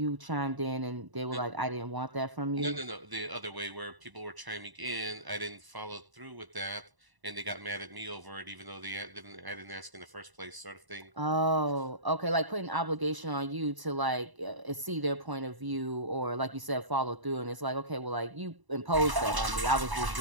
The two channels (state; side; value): late; left; 1.0 ms